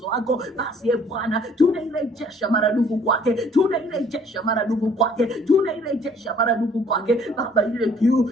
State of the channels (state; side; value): normal; both; correlation 0.58